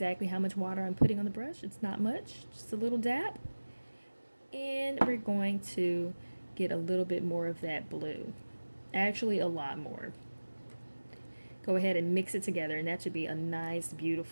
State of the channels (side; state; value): both; inverted; correlation -1.00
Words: how much water I'm putting on the brush. It's not much, just a little dab. And we're going to get a little bit more of that blue. Actually, a lot more. Go ahead and mix it together, and that should be a nice,